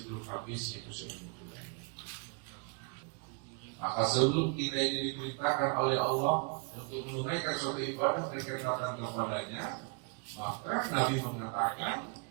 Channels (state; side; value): quieter; left; 33.2 dB